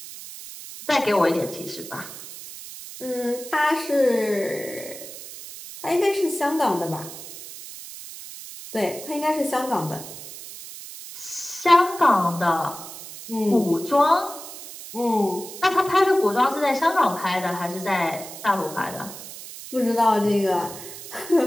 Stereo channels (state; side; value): noise; right; hiss, 13 dB below the sound